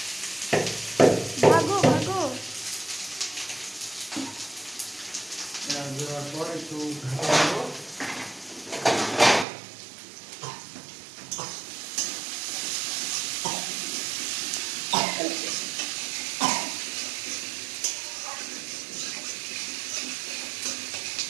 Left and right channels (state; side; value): drops out; left; at 9.5 s